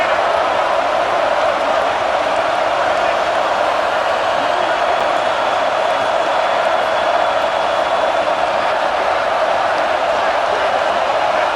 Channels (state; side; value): identical; both; correlation 1.00